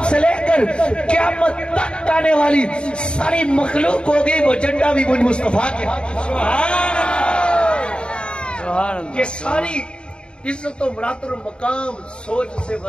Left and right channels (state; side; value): late; right; 0.053 ms